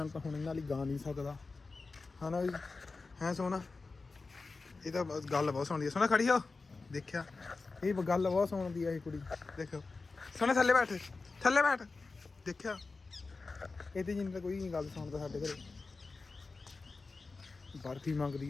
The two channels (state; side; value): quieter; right; 3.9 dB